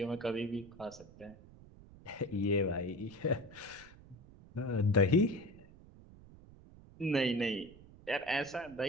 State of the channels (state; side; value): noise; right; rumble, 21 dB below the sound